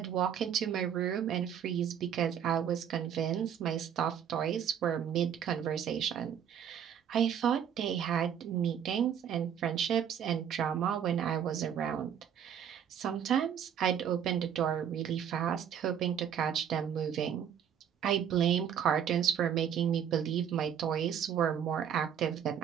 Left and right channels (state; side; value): quieter; left; 8.7 dB